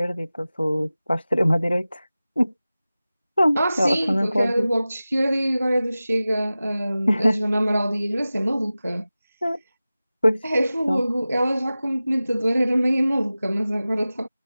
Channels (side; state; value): both; inverted; correlation -0.96